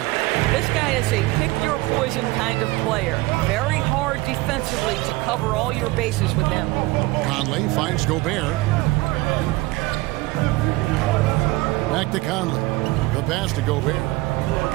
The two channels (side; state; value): left; quieter; 20.8 dB